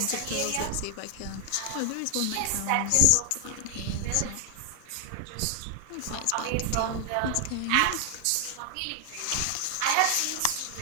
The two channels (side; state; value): both; different; correlation 0.00